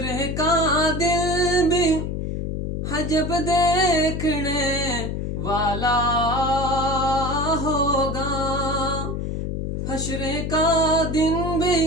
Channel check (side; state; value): left; noise; hum, 3 dB below the sound